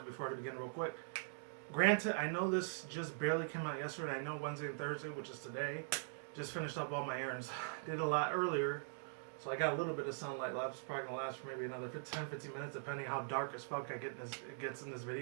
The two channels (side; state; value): left; silent; digital silence